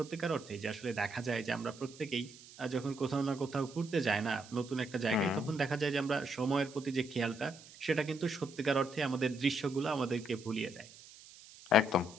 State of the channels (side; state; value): right; noise; hiss, 19 dB below the sound